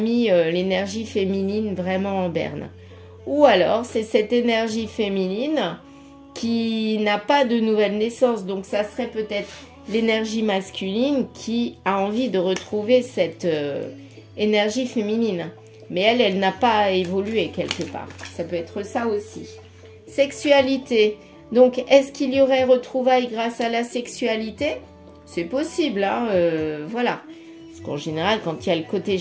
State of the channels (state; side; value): identical; both; correlation 1.00